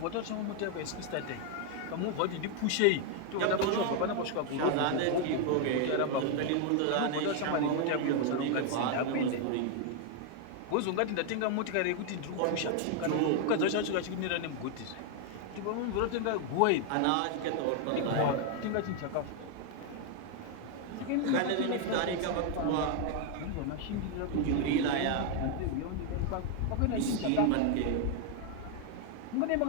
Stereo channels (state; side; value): different; both; correlation 0.01